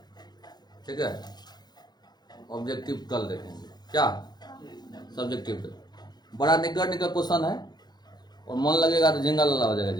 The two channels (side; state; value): right; late; 0.20 ms